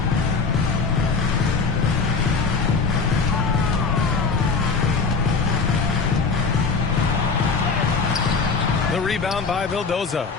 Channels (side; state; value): right; quieter; 4.7 dB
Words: The rebound by Vildoza.